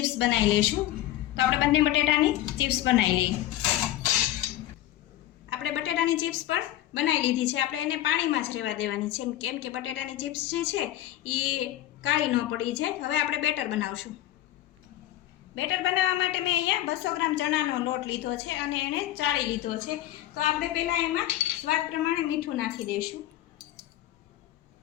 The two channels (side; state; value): right; quieter; 13.8 dB